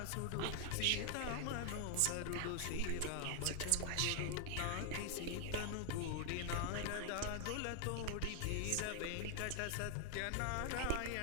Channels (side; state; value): both; different; correlation 0.00